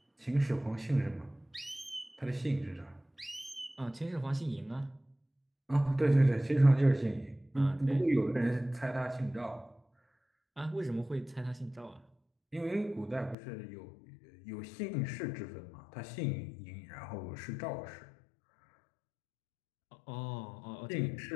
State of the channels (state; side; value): drops out; right; at 13.4 s